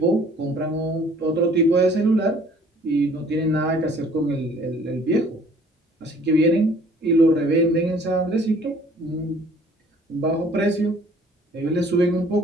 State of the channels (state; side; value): normal; both; correlation 0.55